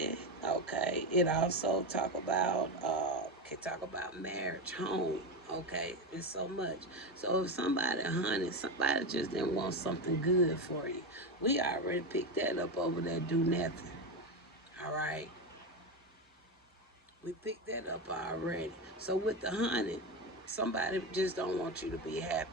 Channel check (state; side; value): normal; both; correlation 0.15